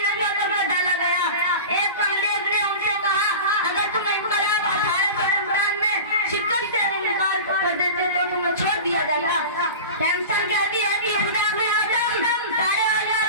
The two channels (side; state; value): both; inverted; correlation -0.32